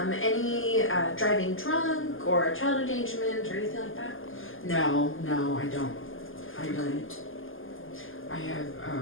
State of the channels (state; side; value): late; right; 0.59 ms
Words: Any driving drunk or child endangerment or anything like that? No, I don't. I don't. I have